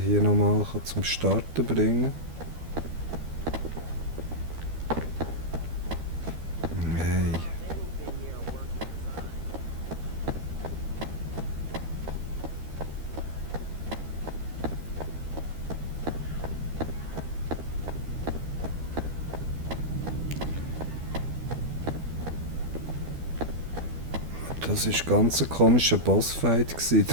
nochmal zum Starten bringen kann. Hey. Das war ganz ein komischer Bossfight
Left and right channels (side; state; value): left; late; 12 ms